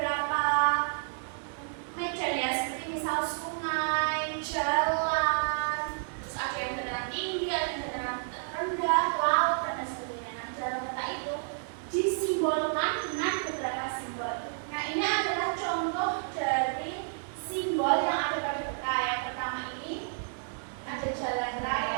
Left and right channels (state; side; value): silent; left; digital silence